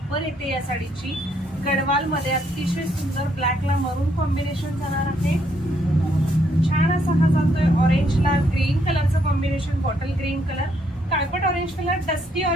येते या साडीची गडवाल मध्ये, अतिशय सुंदर ब्लॅकला मरून कॉम्बिनेशन जाणार आहे। छान असा हा जातोय ऑरेंजला ग्रीन कलरचं कॉम्बिनेशन, बॉटल ग्रीन कलर, काळपट orange colour, dusty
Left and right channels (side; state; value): both; normal; correlation 0.72